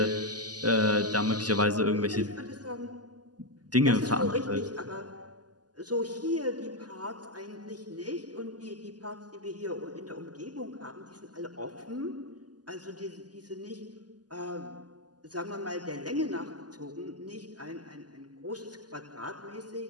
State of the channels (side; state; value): left; late; 0.68 ms